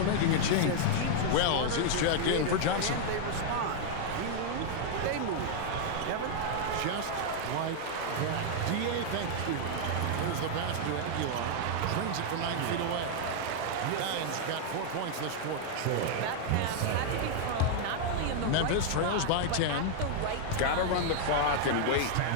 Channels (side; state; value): both; different; correlation 0.00